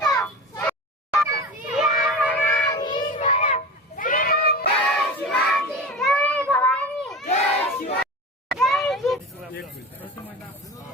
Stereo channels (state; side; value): normal; both; correlation 0.30